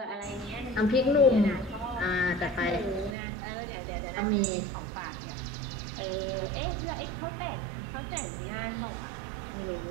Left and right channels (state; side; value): drops out; left; at 3.2 s